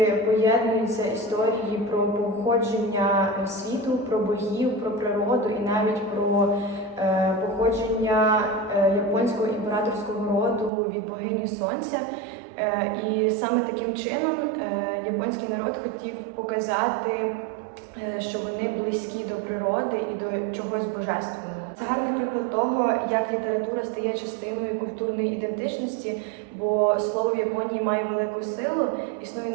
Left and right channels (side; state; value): left; drops out; at 10.7 s